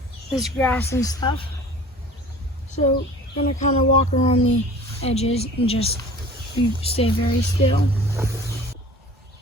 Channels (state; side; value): normal; both; correlation 0.44